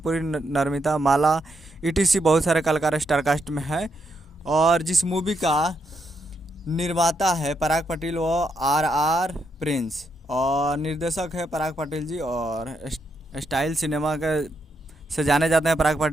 नर्मिता माला, ईटीसी बहुत सारे कलाकार स्टार कास्ट में है। और जिस मूवी का निर्माता है पराग पाटिल व आर आर प्रिंस, और निर्देशक है पराग पाटिल जी, और स्टाइल सिनेमा का से जाने जाते हैं पराग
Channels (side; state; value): both; normal; correlation 0.79